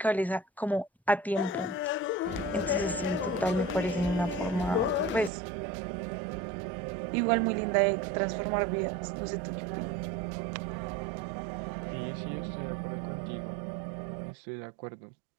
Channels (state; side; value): drops out; left; at 5.3 s